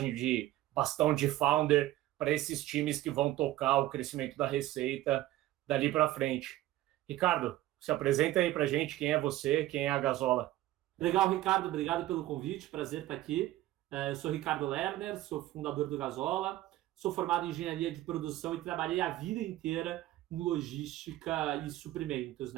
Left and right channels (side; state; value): left; quieter; 15.4 dB